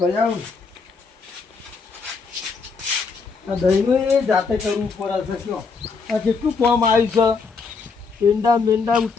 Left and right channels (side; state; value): right; quieter; 4.9 dB